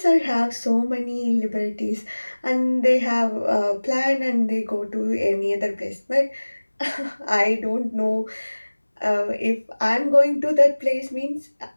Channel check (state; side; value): inverted; both; correlation -1.00